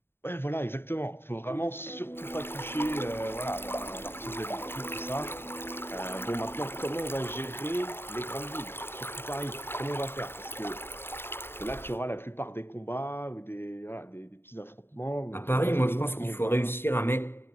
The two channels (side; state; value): right; late; 0.11 ms